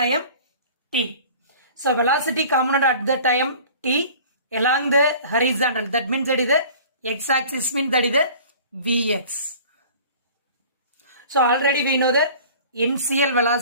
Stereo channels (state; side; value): inverted; both; correlation -0.45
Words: t. So velocity component at the time t along the horizontal, that means that is the x-axis, means that is the vx. So already we know the initial